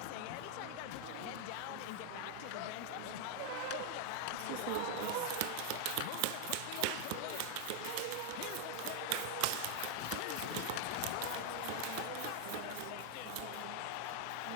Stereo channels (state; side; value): different; both; correlation 0.00